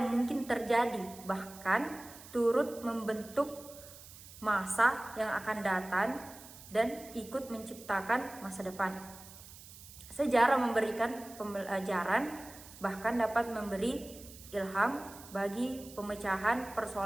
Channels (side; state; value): right; noise; hiss, 17 dB below the sound